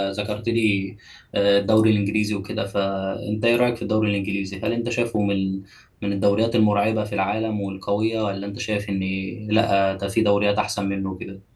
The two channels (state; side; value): identical; both; correlation 1.00